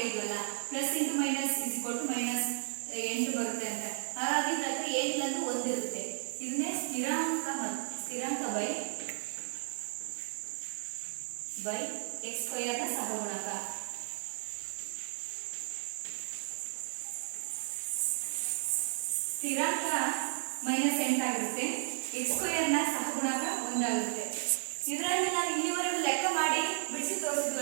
plus into minus is equal to -8 ಬರುತ್ತೆ ಅಂತ. ಹಾಗಾಗಿ ಇದ್ರ ಹತ್ರ ಏನಿಲ್ಲ ಅಂದ್ರೆ 1 ಇರುತ್ತೆ. ಇದನ್ನೇ ಸ್ಥಿರಾಂಕ ಬೈ x ಸ್ಕ್ವೇರ್ ನ ಸಹಗುಣಕ. ಸ್ಥಿರಾಂಕ -8 ಆಗಿರುತ್ತೆ, x ಸ್ಕ್ವೇರ್ ನ ಸಹಗುಣಕ 1 ಆಗುತ್ತೆ. ಇದರಲ್ಲಿ ನಾನು ಇಲ್ಲಿವರೆಗೂ ಲೆಕ್ಕ ಮಾಡಿ ಬಿಡಿಸಿ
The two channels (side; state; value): left; silent; digital silence